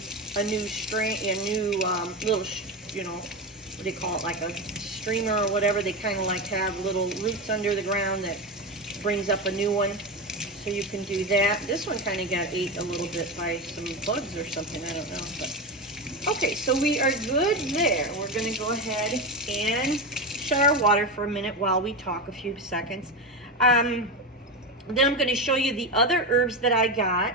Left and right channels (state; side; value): normal; both; correlation 0.16